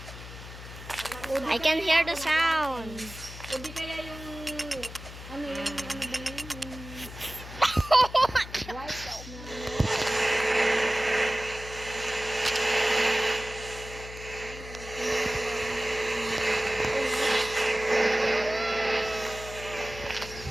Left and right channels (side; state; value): left; noise; hum, 13 dB below the sound